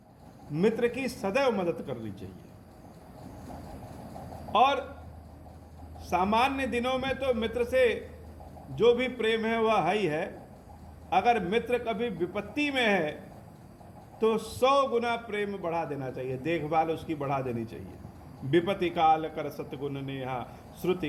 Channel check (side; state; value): both; identical; correlation 1.00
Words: मित्र की सदैव मदद करनी चाहिए। और सामान्य दिनों में तो मित्र से जो भी प्रेम है वह है ही है। अगर मित्र कभी विपत्ति में है तो 100 गुना प्रेम बढ़ा देना चाहिए, देखभाल उसकी बढ़ा देनी चाहिए। विपत्ति काल कर सतगुण नेहा,